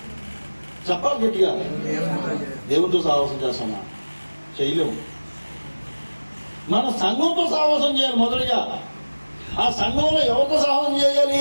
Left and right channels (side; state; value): both; inverted; correlation -1.00